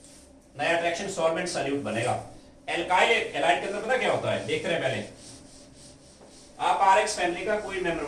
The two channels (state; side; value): identical; both; correlation 1.00